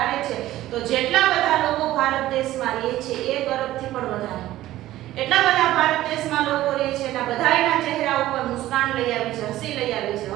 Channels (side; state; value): left; quieter; 15.0 dB